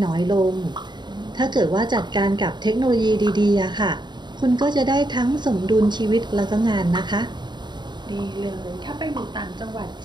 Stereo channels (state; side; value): late; left; 0.21 ms